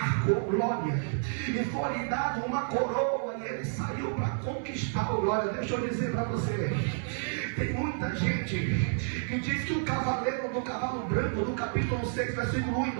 glória. E foi-lhe dado uma coroa, e ele saiu para conquistar, glória. Deixa eu dizer para você. Tem muita gente que diz que o cavaleiro do cavalo branco, no capítulo 6, versículo 1 e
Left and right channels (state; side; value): silent; left; 58 dB below the other